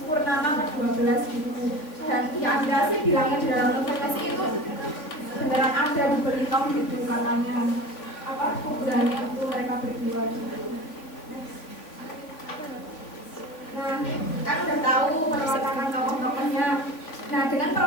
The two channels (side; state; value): right; late; 3.4 ms